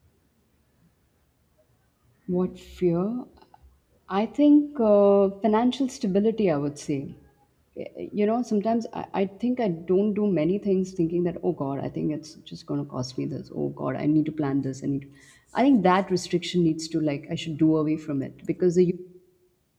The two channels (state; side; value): identical; both; correlation 1.00